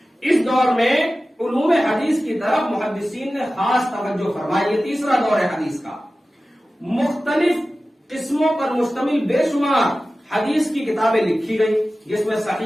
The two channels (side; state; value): both; normal; correlation 0.95